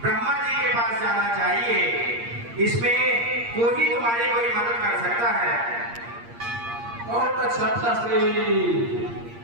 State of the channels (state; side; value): late; left; 8.6 ms